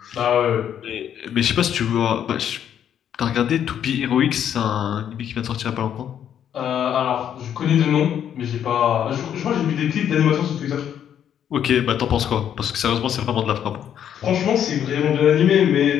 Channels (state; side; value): quieter; right; 9.5 dB